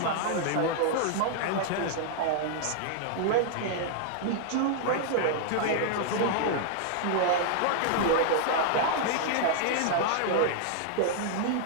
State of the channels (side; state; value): both; different; correlation -0.01